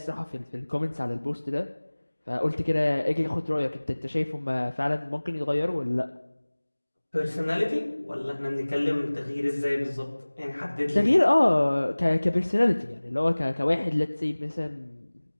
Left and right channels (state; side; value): inverted; both; correlation -1.00